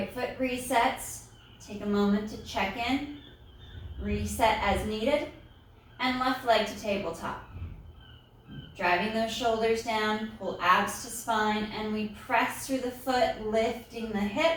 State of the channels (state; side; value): identical; both; correlation 1.00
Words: foot resets. Take a moment to check in. Reset as needed, and left leg to tabletop. Driving those shoulders down, pull abs to spine, and we press through the foot, lifting the